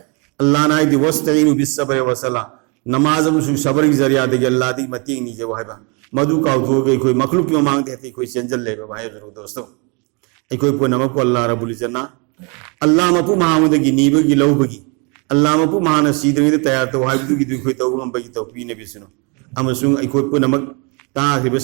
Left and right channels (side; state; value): left; quieter; 32.5 dB